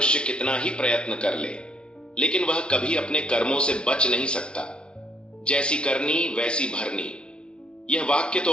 कितना ही प्रयत्न कर ले, लेकिन वह कभी अपने कर्मों से बच नहीं सकता। जैसी करनी वैसी भरनी, यह वाक्य तो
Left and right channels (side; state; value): right; late; 0.056 ms